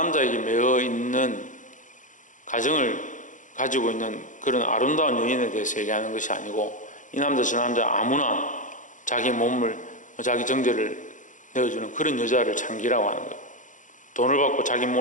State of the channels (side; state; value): right; late; 0.37 ms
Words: 매어 있는 가정을 가지고 있는 그런 아름다운 여인에 대해서 얘기하는 것이 아니고, 이 남자 저 남자 아무나 자기 몸을, 자기 정제를 내어주는 그런 여자를 장기라고 하는 거예요. 돈을 받고 자기